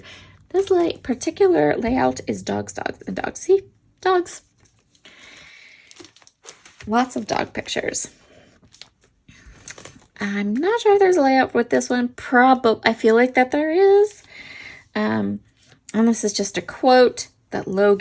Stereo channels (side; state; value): both; identical; correlation 1.00